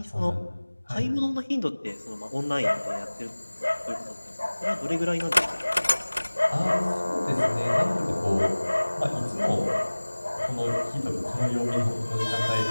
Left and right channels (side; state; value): both; inverted; correlation -1.00